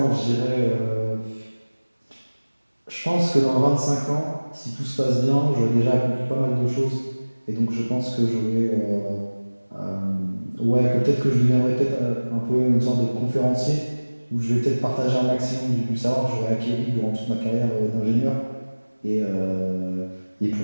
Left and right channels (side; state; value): both; inverted; correlation -1.00